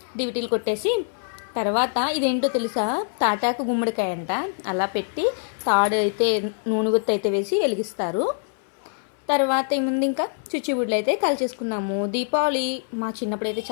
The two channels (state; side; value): silent; right; 60 dB below the other